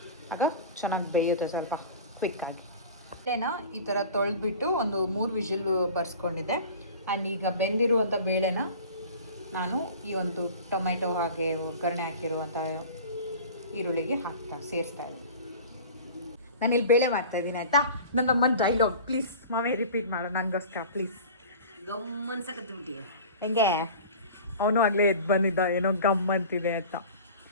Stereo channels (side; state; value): both; inverted; correlation -0.39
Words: ಆಗ ಚೆನ್ನಾಗಿ ಬೇಯುತ್ತೆ ಸ್ವಲ್ಪ ಕ್ವಿಕ್ಕಾಗಿ. ಬೇಳೆನ ಈ ಥರ ತೊಳೆದ್ಬಿಟ್ಟು ಒಂದು 3 ವಿಷಲ್ ಬರ್ಸ್ಕೊಂಡಿದ್ದೆ. ಆ್ಯಂಡ್ ಈಗ ಬೆಂದಿರುವಂಥ ಬೇಳೆನ ನಾನು ಈ ಒಂದು ಟೊಮೆಟೊ ಹಾಗೆ ಒಗ್ಗರಣೆ ಹಾಕಿರುವಂಥ ಈರುಳ್ಳಿಗೆ ಸೇರಿಸ್ತಾ ಇದ್ದೀನಿ. ನಾನಿಲ್ಲಿ ಬೇಳೆ ಮಾಡ್ತಾಯಿದ್ದೀನಿ ಆಯಿತಾ. ನನ್ನ ಅಮ್ಮನ ಡೈಲಾಗ್ ಪ್ಲೀಸ್ ಮಾವೇ ರಿಪೀಟ್ ಮಾಡು ನನಗೋಸ್ಕರ ಪ್ಲೀಸ್. ಗಮ್ಮನ್ಸಕತ್ಬಿಟ್ಟಿಯ ಹೆಂಗೆ ಅವನು ಆಗಲೇ ಎದ್ದು ಬಂದಿದ್ದ ಏನೋ ಗಮ್ ಅಂತಿದೆ ಅಂತ.